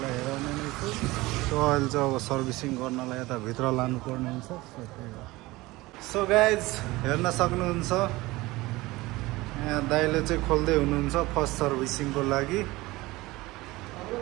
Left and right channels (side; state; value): left; quieter; 20.2 dB